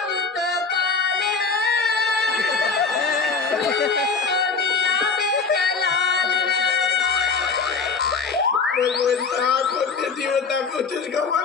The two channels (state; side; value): quieter; right; 4.9 dB